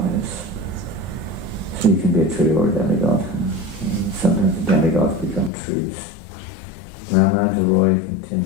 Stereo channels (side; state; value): right; drops out; at 5.5 s